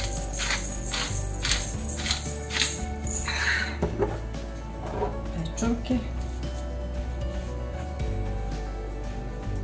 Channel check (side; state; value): both; identical; correlation 1.00